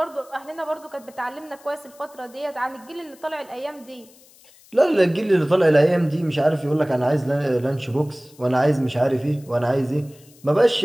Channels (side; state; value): left; noise; hiss, 26 dB below the sound